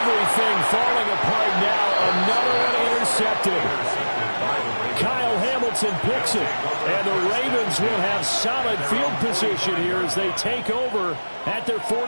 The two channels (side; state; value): both; inverted; correlation -1.00